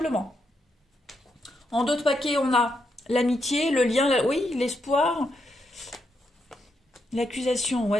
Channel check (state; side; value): normal; both; correlation 0.81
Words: En deux de paquets, on a l'amitié, le lien, oui, l'espoir, l'accusation,